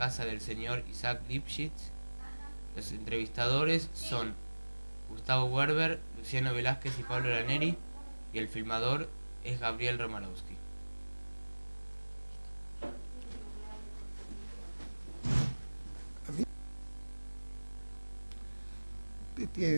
del señor Isaac Lipschitz. Los entrevistadores son Gustavo Werber, Luciano Velázquez y Pablo Laneri, y el filmador es Gabriel Romanowski.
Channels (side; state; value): both; inverted; correlation -1.00